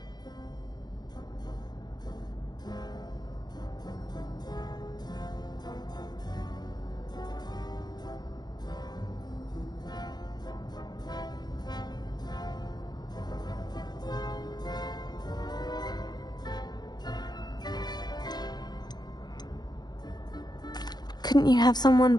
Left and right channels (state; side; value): late; right; 0.20 ms